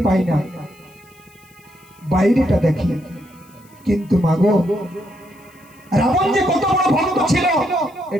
পাই না, বাইরেটা দেখি। কিন্তু মাগো, রাবণ যে কত বড় ভক্ত ছিল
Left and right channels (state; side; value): noise; left; hiss, 29 dB below the sound